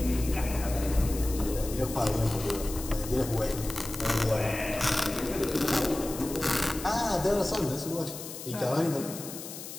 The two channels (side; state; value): left; noise; hiss, 11 dB below the sound